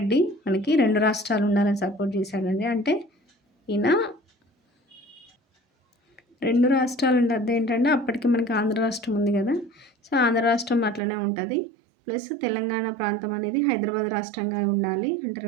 మనకి 2 రాష్ట్రాలు ఉండాలని సపోర్ట్ చేశాడండి. అంటే ఈయన 2 రాష్ట్రాలు అంటే అదేంటంటే అప్పటికి మనకి ఆంధ్ర రాష్ట్రం ఉంది కదా. సో ఆంధ్ర రాష్ట్రం అట్లనే ఉంటుంది. ప్లస్ తెలంగాణ ప్రాంతం అనేది హైదరాబాద్ రాష్ట్రంగా ఉండాలి. అంటే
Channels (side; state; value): left; drops out; at 11.0 s